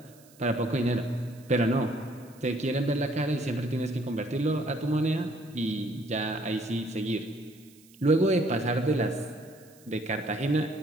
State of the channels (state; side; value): noise; right; hiss, 26 dB below the sound